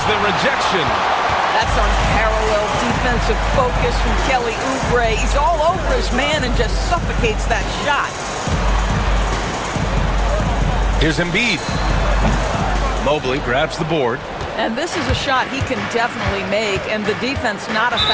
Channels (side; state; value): both; identical; correlation 1.00